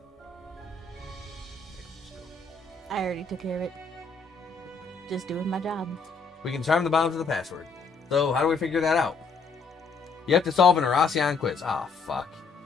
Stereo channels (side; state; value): right; quieter; 4.7 dB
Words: I already took care of it. Just doing my job. We can disarm the bombs with a password. So, how do we figure that out? You have to solve an Erasion quiz. Ah, fuck.